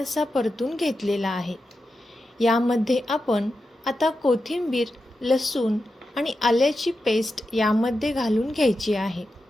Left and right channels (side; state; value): both; normal; correlation 0.90